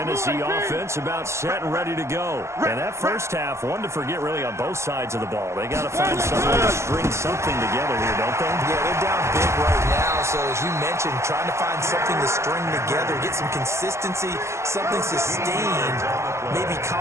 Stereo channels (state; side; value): late; left; 0.13 ms